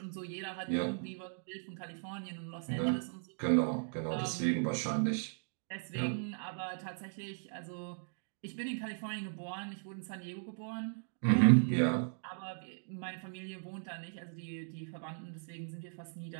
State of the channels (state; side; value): silent; left; digital silence